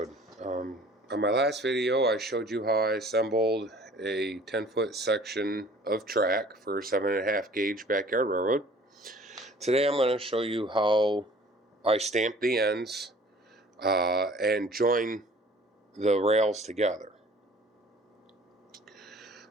On my last video I showed you how I assembled a 10-foot section of track for a 7.5 gauge backyard railroad. Today I'm going to show you how I stamp the ends and join the rails together.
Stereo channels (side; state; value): both; normal; correlation 0.51